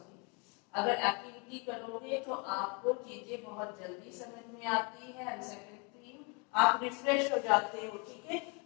अगर एक्टिविटी करोगे तो आपको चीजें बहुत जल्दी समझ में आती है एंड सेकंड थिंग आप रिफ्रेश हो जाते हो। ठीक है,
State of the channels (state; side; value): quieter; right; 33.6 dB